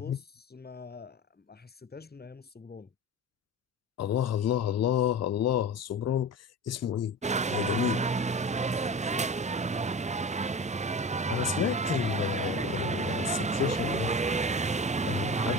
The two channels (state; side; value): normal; both; correlation 0.31